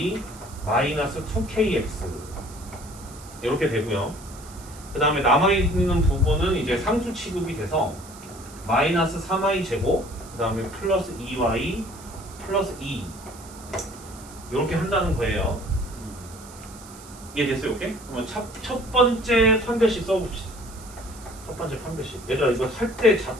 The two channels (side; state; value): right; noise; hiss, 19 dB below the sound